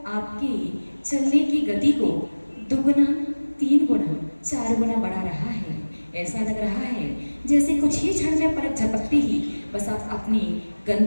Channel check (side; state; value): both; inverted; correlation -1.00